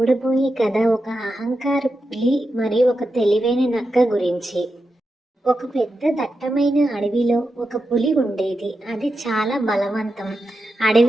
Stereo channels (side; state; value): both; normal; correlation 0.89